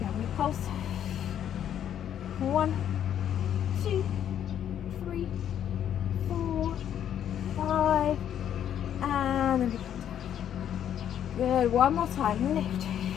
we pulse. 1, 2, 3, 4, 5. And then we come down. Good. One more time. Lift.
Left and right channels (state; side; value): quieter; right; 9.9 dB